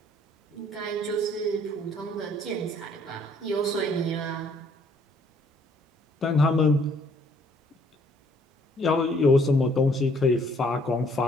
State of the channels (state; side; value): normal; both; correlation 0.63